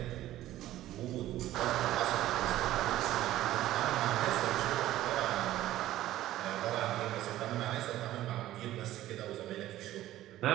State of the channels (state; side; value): quieter; left; 14.4 dB